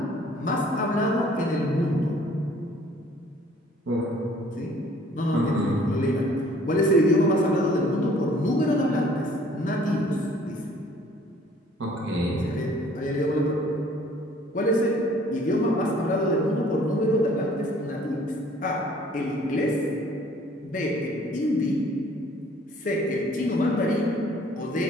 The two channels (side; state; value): both; normal; correlation 0.56